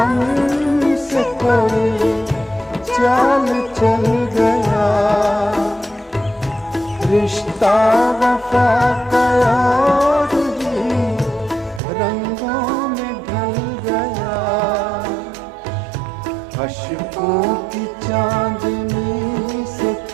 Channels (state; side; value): drops out; left; at 11.8 s